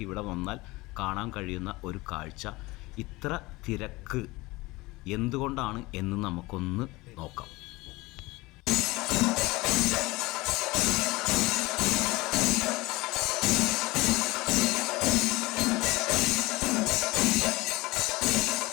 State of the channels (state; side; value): quieter; right; 21.6 dB